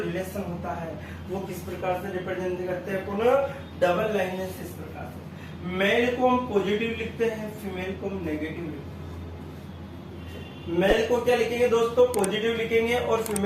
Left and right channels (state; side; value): identical; both; correlation 1.00